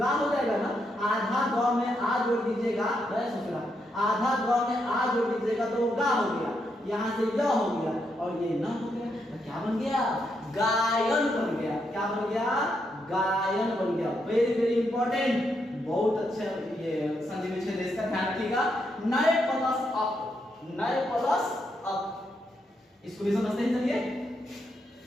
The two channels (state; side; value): normal; both; correlation 0.80